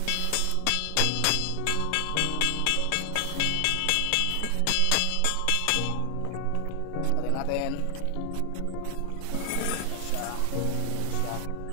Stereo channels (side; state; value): both; different; correlation 0.00